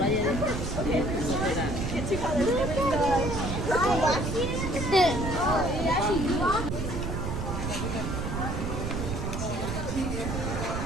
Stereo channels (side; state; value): right; noise; rumble, 3 dB below the sound